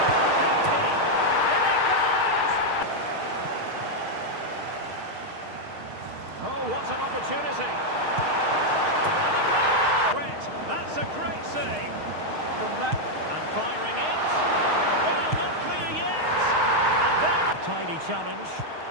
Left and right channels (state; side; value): late; left; 6.5 ms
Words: And it goes! Oh, what an opportunity! And a goal! That's a great save. From that, and firing it. Well, not clear yet. And there, tidy challenge.